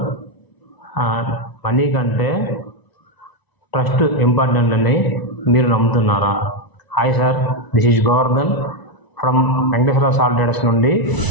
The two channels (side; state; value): right; late; 1.0 ms